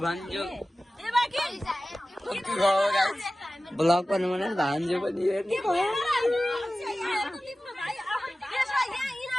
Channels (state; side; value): normal; both; correlation 0.96